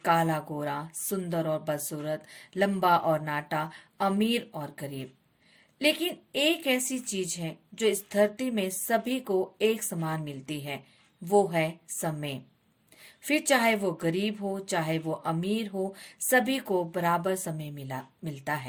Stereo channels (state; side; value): identical; both; correlation 1.00